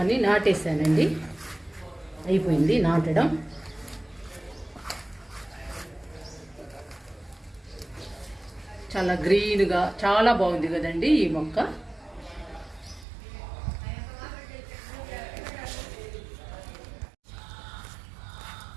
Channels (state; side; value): drops out; left; at 13.1 s